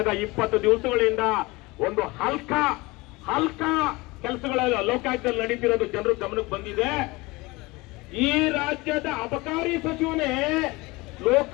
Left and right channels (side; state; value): right; quieter; 23.1 dB